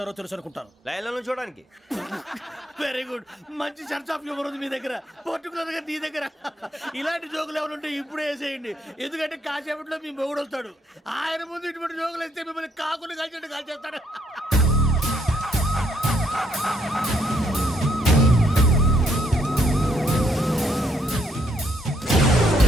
తెలుసు అనుకుంటాను. లైన్లో చూడడానికి. Very good. మంచి సెన్స్ ఆఫ్ హ్యూమర్ ఉంది మీ దగ్గర, పర్టికులర్ గా నీ దగ్గర. ఇలాంటి జోకులు ఏమైనా ఉంటే ఇప్పుడే వేసేయండి, ఎందుకంటే కాసేపట్లో మీ మొగుడు వస్తాడు. ఆయన ముందు ఇటువంటి జోకులు వేస్తే మిమ్మల్ని కాకులు కాల్చేట్టు కాల్చేస్తాడు.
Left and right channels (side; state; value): both; normal; correlation 0.71